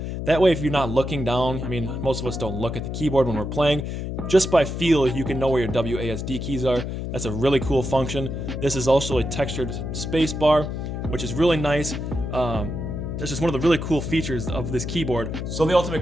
That way if you're not looking down, I mean most of us don't look at the keyboard when we're playing, just by feel you can know where your WASD keys are. That's a really cool function. This is also a textured space bar, which is really nice. That's just one of the really cool features of this keyboard. So the ultimate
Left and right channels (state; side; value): noise; left; hum, 4 dB below the sound